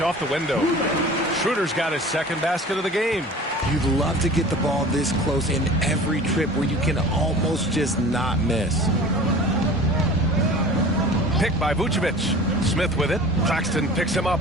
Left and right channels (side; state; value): both; normal; correlation 0.41